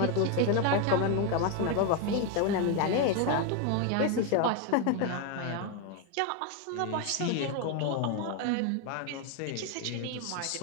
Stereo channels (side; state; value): both; different; correlation 0.01